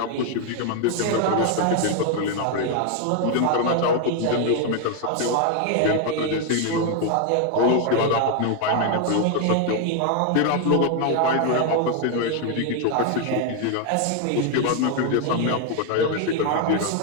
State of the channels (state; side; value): different; both; correlation 0.01